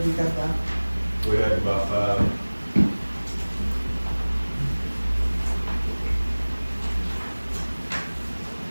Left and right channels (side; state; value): both; inverted; correlation -1.00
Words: you got by? We had about 5.